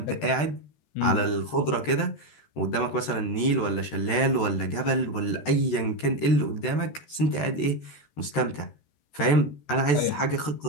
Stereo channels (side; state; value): right; late; 13 ms